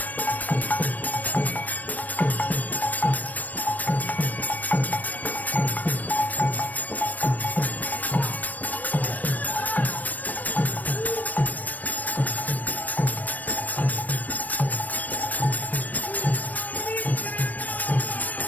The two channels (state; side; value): late; right; 0.081 ms